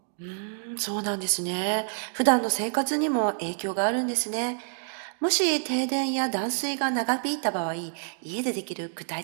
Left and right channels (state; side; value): silent; left; 60 dB below the other